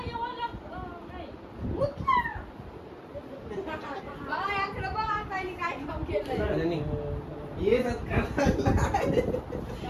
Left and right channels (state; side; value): identical; both; correlation 1.00